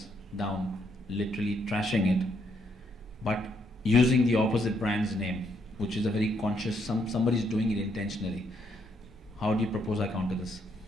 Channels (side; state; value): both; normal; correlation 0.74